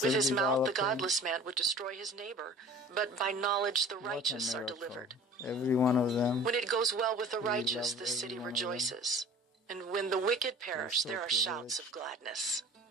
With his mouth, the developing. godless man would destroy his neighbor, but by knowledge the What a righteous are miracle. delivered. Every one of them. When it goes well with the We righteous, love the city every one of them. rejoices, and when the wicked perish, so there are privileged. shouts of gladness.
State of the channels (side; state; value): both; normal; correlation 0.43